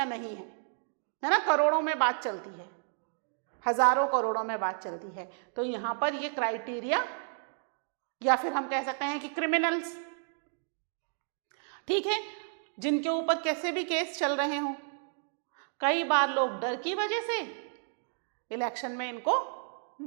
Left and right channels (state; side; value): silent; left; digital silence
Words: नहीं है ना? करोड़ों में बात चलती है, हजारों करोड़ों में बात चलती है। तो यहाँ पर ये क्राइटेरिया, या फिर हम कह सकते हैं कि क्रिमिनल्स, ठीक है, जिनके ऊपर कैसे भी केस चल रहे हों, कई बार लोग डर की वजह से इलेक्शन में इनको